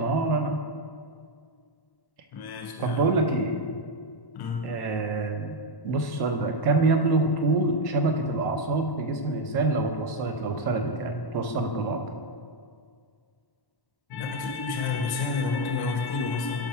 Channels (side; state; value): right; late; 1.1 ms